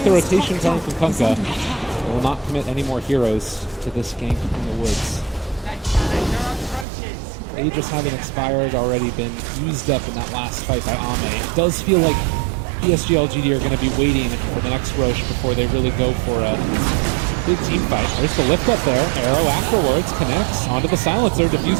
the rotation coming from Kunkka, they will not commit any more heroes to this gank in the woods. Aegis having expired, already been used up in that last fight by Ame. It does feel like PSG LGD are going to be waiting for the next Roche before they really go for a big team fight. There's the lift up there. Arrow afterwards connects onto the silencer.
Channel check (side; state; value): left; drops out; at 6.9 s